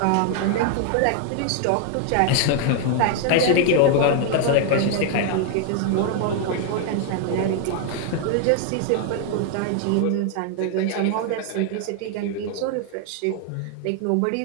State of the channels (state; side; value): different; both; correlation 0.00